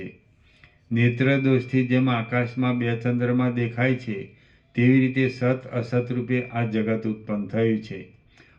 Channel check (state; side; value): identical; both; correlation 1.00